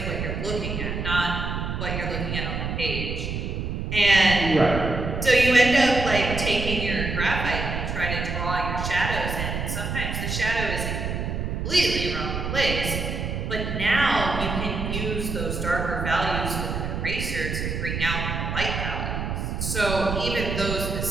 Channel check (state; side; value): noise; right; rumble, 3 dB below the sound